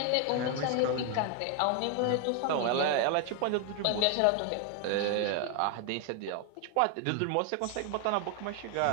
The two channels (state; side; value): different; both; correlation 0.00